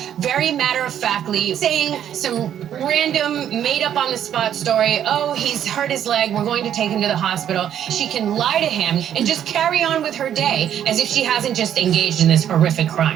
very matter-of-factly, saying some random, made-up-on-the-spot story. Oh, he's hurt his leg, we're going to take him to the hospital. She can lie to him and just carry on with her day as if she hasn't just engaged in this horrific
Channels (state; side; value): quieter; left; 10.0 dB